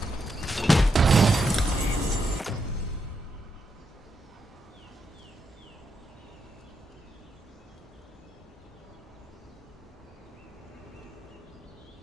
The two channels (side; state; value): both; normal; correlation 0.82